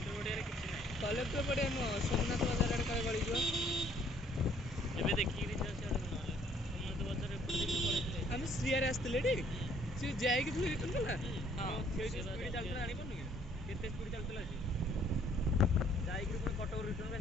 पड़िया किसी ना कलेक्टर पड़िया नुह सोमनाथ बाजार आड़े काले गड़ी जो एबे देखि रि छ सेड सोमनाथ बाजार एपटे पड़े हम श्रीयार आस्ते टी सी जाए कि फिर रिटर्न कला। हां स्पीड चलता आनी पड़नी केते स्पीड चलतला सी जाई कि पुणी कटक रिटर्न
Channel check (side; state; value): both; normal; correlation 0.62